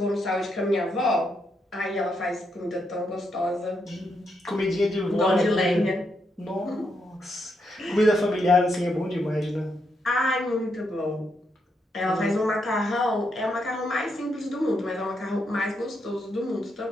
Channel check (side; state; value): both; normal; correlation 0.80